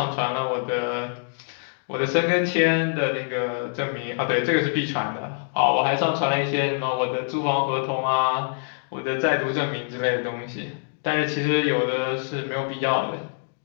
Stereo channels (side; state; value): right; silent; digital silence